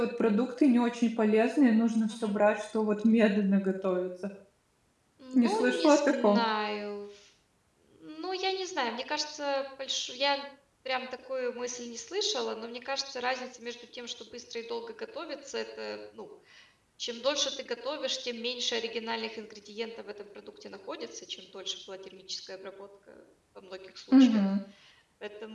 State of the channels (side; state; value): both; identical; correlation 1.00